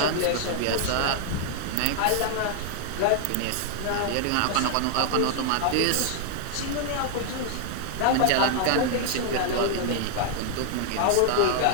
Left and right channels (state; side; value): different; both; correlation 0.00